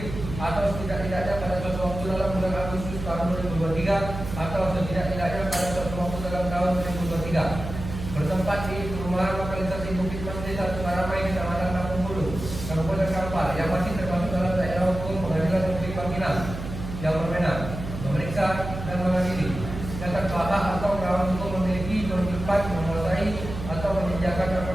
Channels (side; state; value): right; noise; hum, 8 dB below the sound